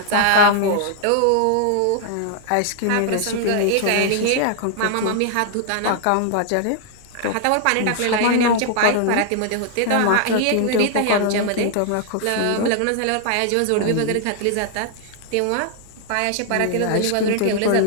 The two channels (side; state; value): both; different; correlation 0.00